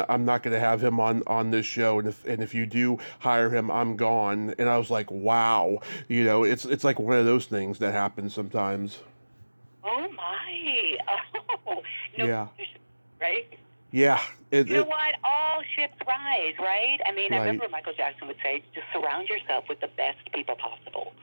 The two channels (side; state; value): both; inverted; correlation -1.00